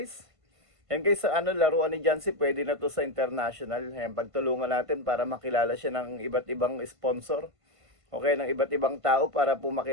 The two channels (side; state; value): left; late; 1.5 ms